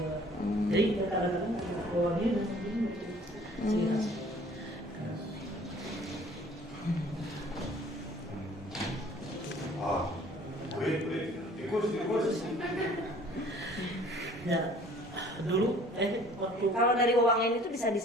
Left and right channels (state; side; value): normal; both; correlation 0.53